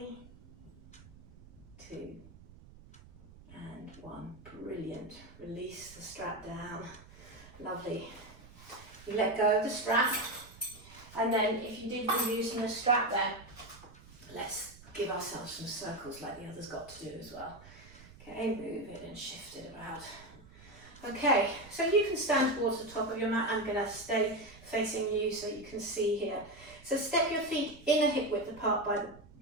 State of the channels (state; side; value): noise; right; rumble, 21 dB below the sound